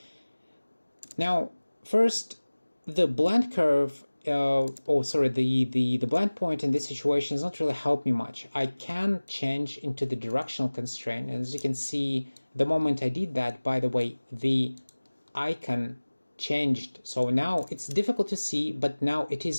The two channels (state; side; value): inverted; both; correlation -1.00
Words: Now, first, the blend curve, the blend point in this situation does not really help me much. I can change into the directional constraint. And as you can see, the moment I did that, by the way, the icon changed. So now it's difficult to see, but now it